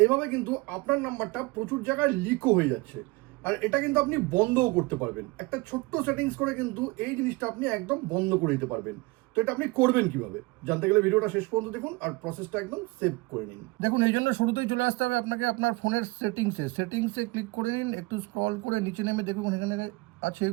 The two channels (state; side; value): quieter; left; 24.2 dB